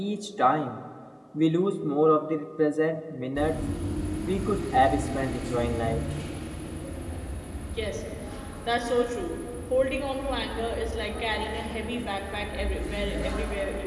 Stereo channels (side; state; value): both; identical; correlation 1.00